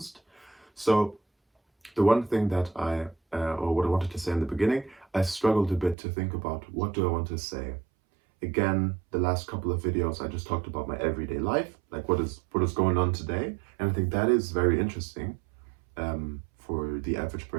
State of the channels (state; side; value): drops out; left; at 6.0 s